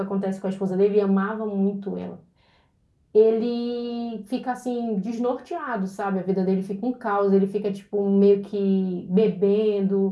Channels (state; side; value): identical; both; correlation 1.00